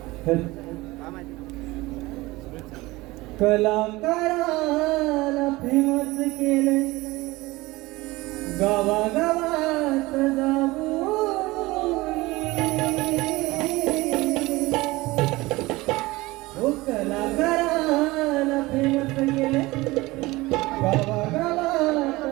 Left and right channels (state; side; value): quieter; left; 20.6 dB